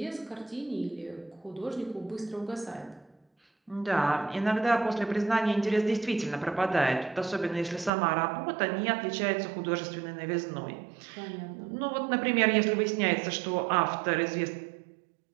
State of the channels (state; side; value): drops out; left; at 7.9 s